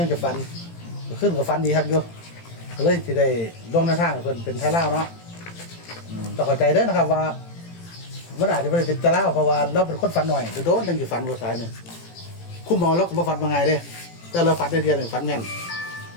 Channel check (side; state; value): right; late; 18 ms